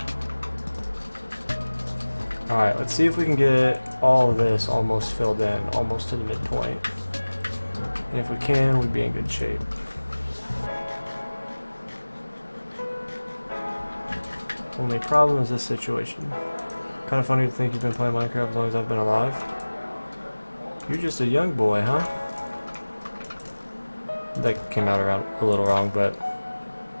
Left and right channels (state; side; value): inverted; both; correlation -1.00